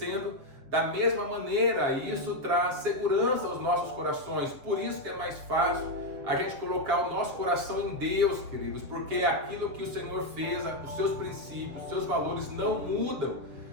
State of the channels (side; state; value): left; late; 7.4 ms